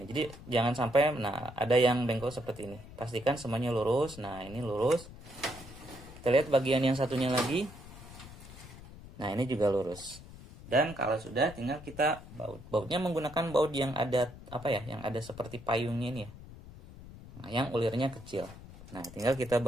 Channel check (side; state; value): left; noise; rumble, 16 dB below the sound